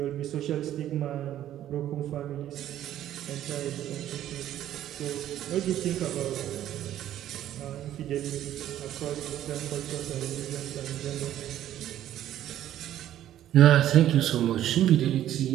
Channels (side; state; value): left; quieter; 12.1 dB